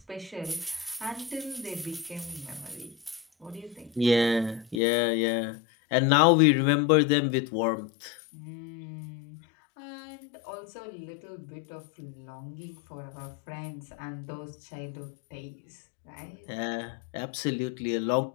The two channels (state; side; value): drops out; right; at 4.8 s